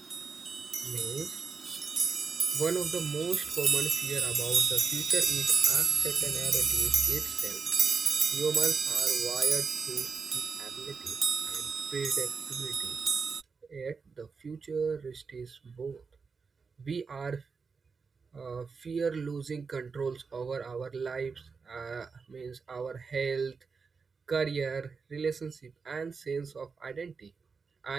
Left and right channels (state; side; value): quieter; left; 5.1 dB